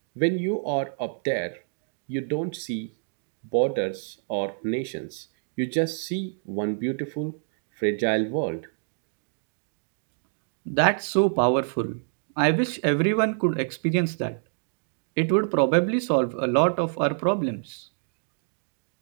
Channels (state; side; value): silent; left; digital silence